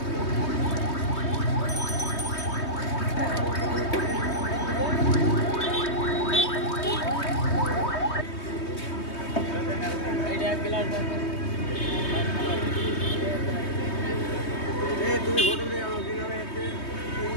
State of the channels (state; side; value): late; right; 3.2 ms